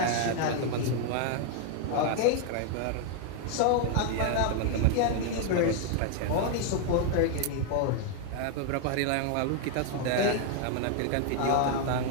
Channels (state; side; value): different; both; correlation 0.00